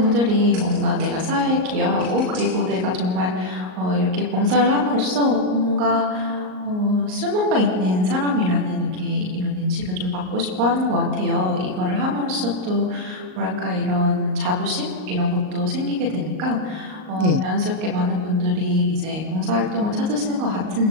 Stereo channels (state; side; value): late; left; 38 ms